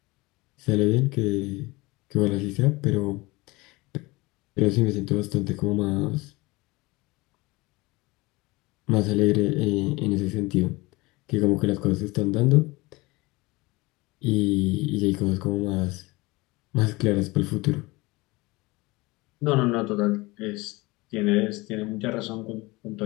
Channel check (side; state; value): right; quieter; 22.8 dB